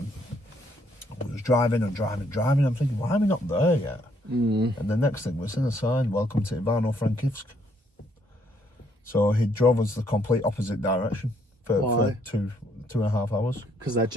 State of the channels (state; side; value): normal; both; correlation 0.69